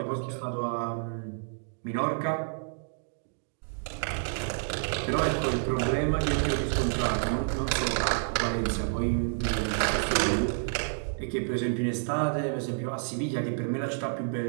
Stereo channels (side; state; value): left; silent; digital silence